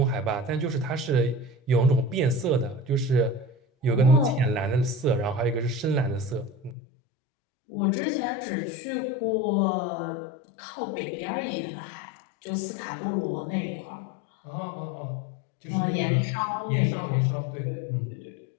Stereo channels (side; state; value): right; drops out; at 6.8 s